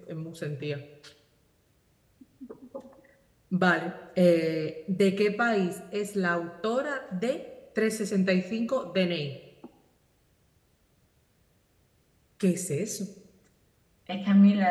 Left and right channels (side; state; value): both; identical; correlation 1.00